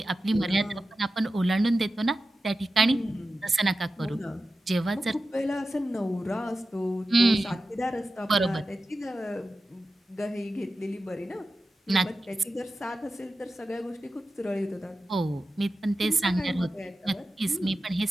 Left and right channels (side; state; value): both; normal; correlation 0.93